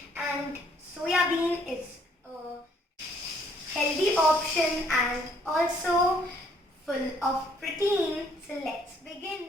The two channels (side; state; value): both; normal; correlation 0.65